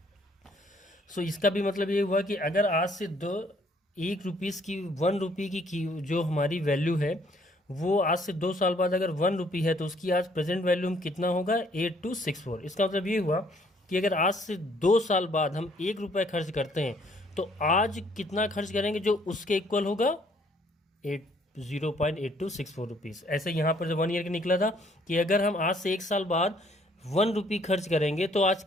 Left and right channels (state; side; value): normal; both; correlation 0.64